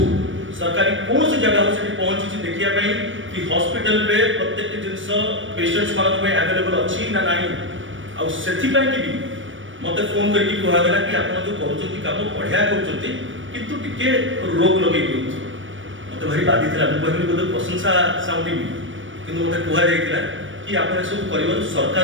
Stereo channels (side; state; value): left; late; 0.56 ms